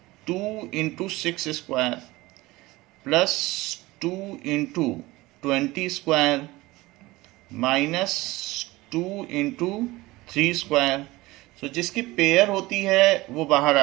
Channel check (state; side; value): quieter; left; 19.9 dB